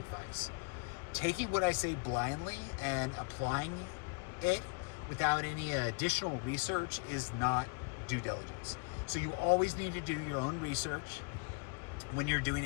Taking what I say blindly and applying it without any additional research is not due diligence. So you always need to do your own research when you're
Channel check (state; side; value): quieter; right; 35.6 dB